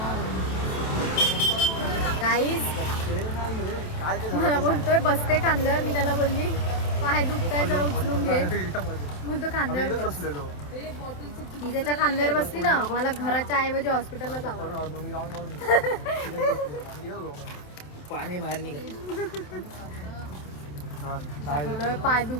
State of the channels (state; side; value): late; right; 27 ms